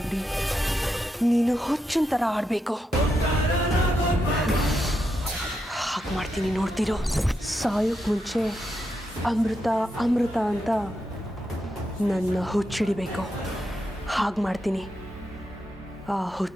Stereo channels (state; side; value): normal; both; correlation 0.84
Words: ನೀನು ಹುಚ್ಚಿನ ಥರ ಆಡಬೇಕು. ಹಾಗೆ ಮಾಡ್ತೀನಿ, ನೋಡ್ತಿರೋ. ಸಾಯೋಕ್ಕೆ ಮುಂಚೆ ಅಮೃತ ಅಮೃತ ಅಂತ ನನ್ನ ಹುಚ್ಚಿಡಿಬೇಕು. ಹಾಗೆ ಮಾಡ್ತೀನಿ. ಆ